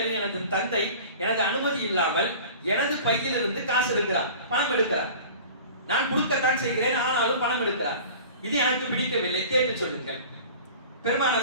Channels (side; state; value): both; inverted; correlation -0.41